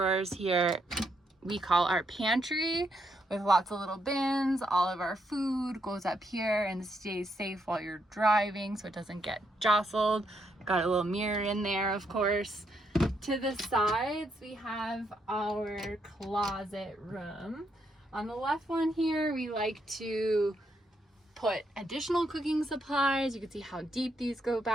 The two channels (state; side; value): normal; both; correlation 0.77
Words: here we call our pantry, with lots of little bins. All of our food goes up here and stays safe while you're driving so it doesn't get jostled. Got a little mirror in there, of course. To the sides we have our closet room. On the left one here we like to put additional cooking supplies. You can see how deep these go